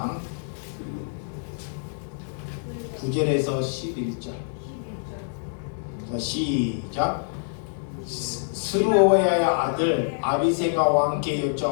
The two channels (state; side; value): silent; right; digital silence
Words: 9절에서 11절. 자, 시작. 스루야의 아들 아비새가 왕께